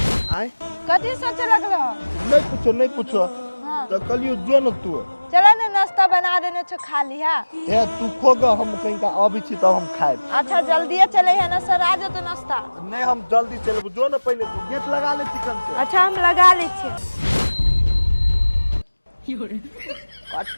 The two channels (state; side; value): inverted; both; correlation -1.00